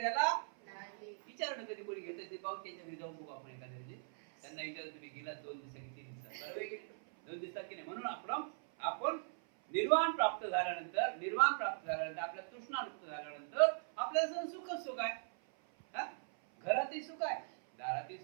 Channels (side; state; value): left; silent; 51 dB below the other